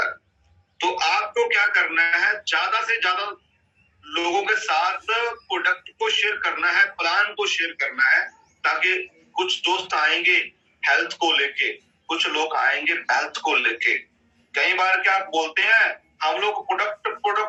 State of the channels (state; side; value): identical; both; correlation 1.00